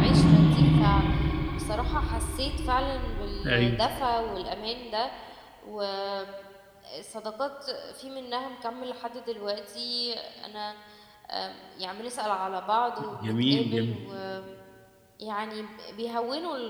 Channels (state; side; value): identical; both; correlation 1.00